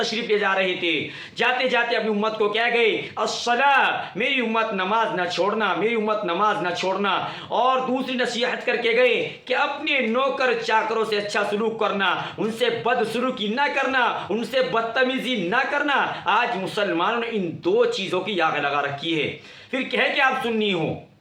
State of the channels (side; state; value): both; identical; correlation 1.00